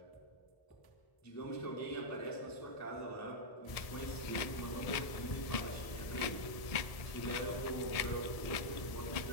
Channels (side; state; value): right; late; 1.7 ms